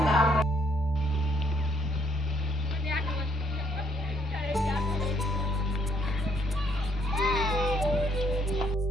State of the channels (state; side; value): normal; both; correlation 0.69